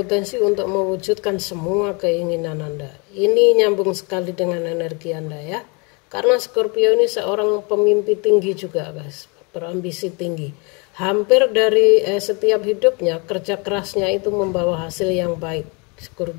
untuk mewujudkan semua keinginan Anda. Ini nyambung sekali dengan energi Anda ya. Karena Scorpio ini seorang pemimpi tinggi juga guys, berambisi tinggi. Hampir dari setiap hidupnya, kerja kerasnya itu membawa hasil yang baik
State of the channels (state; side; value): quieter; right; 31.8 dB